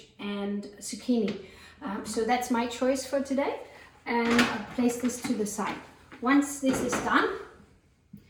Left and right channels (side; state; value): both; identical; correlation 1.00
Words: and zucchini. So that's my choice for today. And I'll place this to the side. Once this is done,